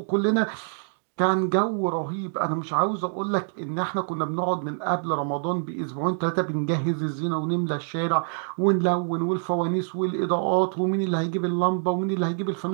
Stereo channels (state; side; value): silent; left; digital silence